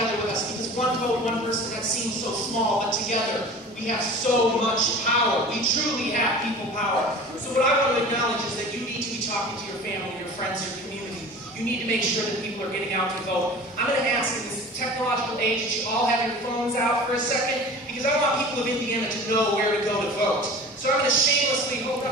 with us, because one vote, one person, that seems so small, but together we have so much power. We truly have people power. So what I want to acknowledge is that you need to be talking to your family, your friends, your community. You need to make sure that people are getting out to vote. I'm going to ask in this technological age that you all have your phones out for a second, because I want people of Indiana to know where to go to vote. So I'm going to shamelessly hold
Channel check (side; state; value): both; normal; correlation 0.39